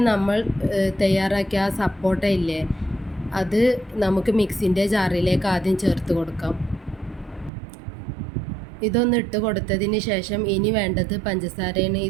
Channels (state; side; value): drops out; left; at 7.5 s